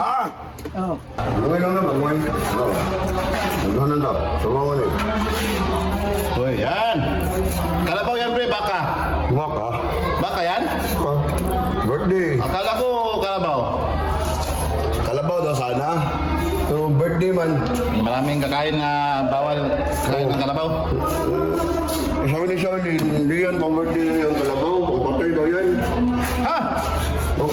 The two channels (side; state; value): both; identical; correlation 1.00